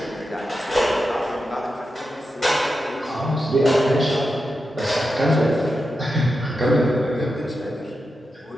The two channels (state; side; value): normal; both; correlation 0.89